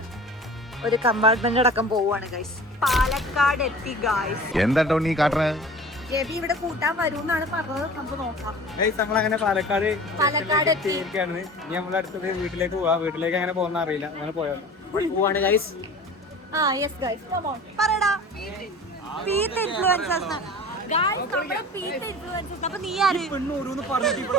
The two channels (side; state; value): both; normal; correlation 0.40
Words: ഒരു കമ്പാർട്ട്മെന്റ് അടക്കം പോവാണ് ഗൈസ്. പാലക്കാട് എത്തി ഗൈസ്. എന്താ നീ കാട്ടണേ? ജെബി ഇവിടെ കൂട്ടാൻ വരൂന്നാണ് പറഞ്ഞത്. നമുക്ക് നോക്കാം. നമ്മളങ്ങനെ പാലക്കാട് എത്തിയിരിക്കുകയാണ്. ഇനി നമ്മളെ അടുത്തത് വീട്ടിലേക്ക് പോവാ. വീട്ടിലേക്ക് അങ്ങനെ പോകുന്ന അറിയില്ല. അങ്ങനെ പോവാണ് guys. Yes guys, come on പറടാ. പീത്ത് ഇൻഫ്ലുവൻസേഴ്സ് ഗൈസ്, നമ്മുടെ പീത്ത് ഇൻഫ്ലുവൻസേഴ്സ്. അപ്പൊ നീ ആര്?